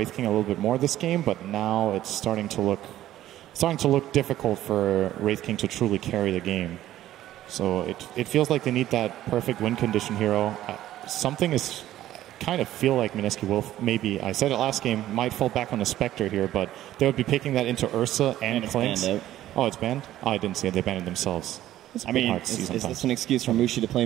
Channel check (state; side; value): quieter; left; 13.4 dB